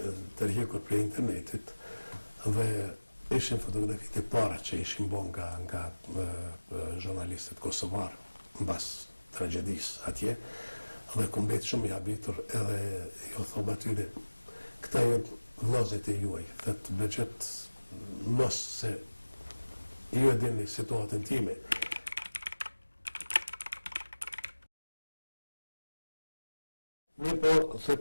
tërhequr prej internetit dhe ishin fotografitë e para që ishin bën nga jurnalistët kosovar mbas tragjedisë atje. Dhe ku mbet shumë i habitur edhe ju thom atyre, këta janë vllazët e juaj, thot bëgjet mos se ju e dini situatën time. Mirë po,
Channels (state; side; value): inverted; both; correlation -1.00